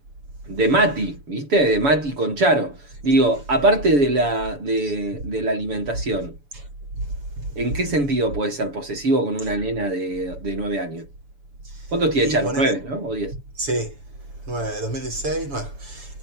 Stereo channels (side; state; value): left; late; 7.0 ms